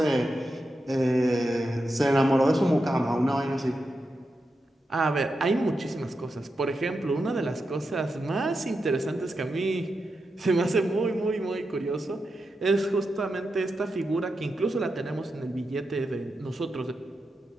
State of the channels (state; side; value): normal; both; correlation 0.88